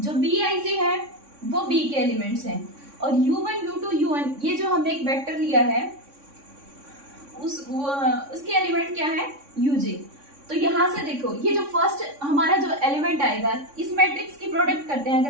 बी आई जे है वो बी के एलिमेंट्स हैं और u1 u2 un ये जो हमने एक वेक्टर लिया है उसके एलिमेंट क्या है, uj। तो यहाँ से देखो ये जो फर्स्ट हमारा जो एलिमेंट आएगा इस मैट्रिक्स की प्रोडक्ट करते हैं,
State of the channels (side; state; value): left; late; 3.6 ms